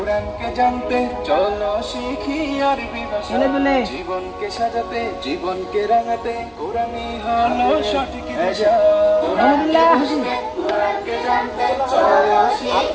জানতে চলো শিখি আরবি ভাষা জীবনকে সাজাতে জীবনকে রাঙাতে কোরআনই হলো সঠিক দিশা কোরআনকে জানতে চলো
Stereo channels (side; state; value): both; identical; correlation 1.00